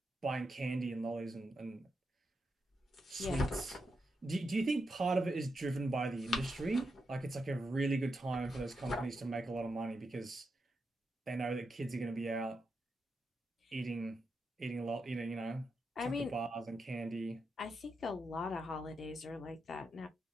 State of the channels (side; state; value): both; normal; correlation 0.85